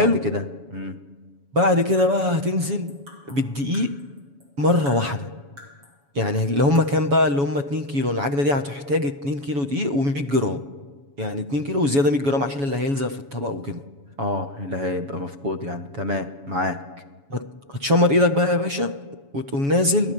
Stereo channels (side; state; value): left; late; 7.1 ms